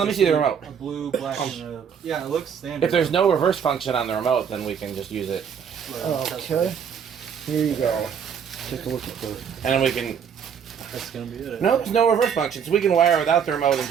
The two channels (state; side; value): quieter; left; 7.5 dB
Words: me see the remote. A blue, black, and a. Yeah, it looks standard. If there's no reverse function on the remote, then we can just use it. Okay. Here you go. Take a look at the. And then we can... That's gonna be it. No, there's no reverse function, so we can wire it without the remote and